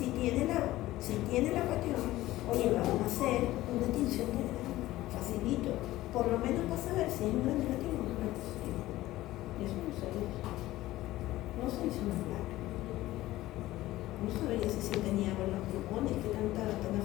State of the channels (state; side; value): quieter; right; 16.4 dB